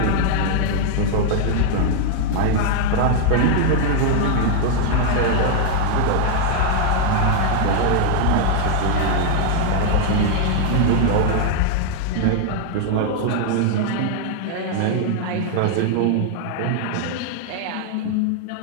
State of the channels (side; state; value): both; different; correlation 0.00